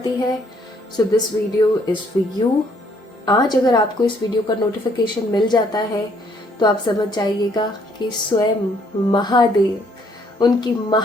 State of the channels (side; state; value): both; normal; correlation 0.66